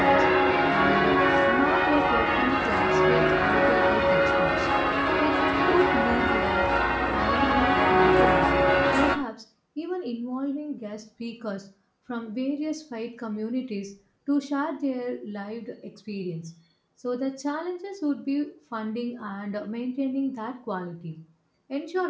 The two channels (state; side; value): identical; both; correlation 1.00